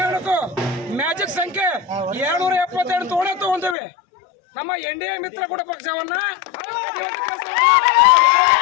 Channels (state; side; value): drops out; right; at 3.8 s